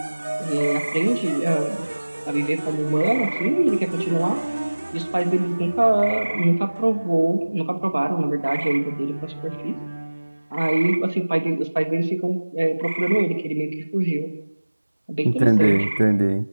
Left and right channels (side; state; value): both; inverted; correlation -1.00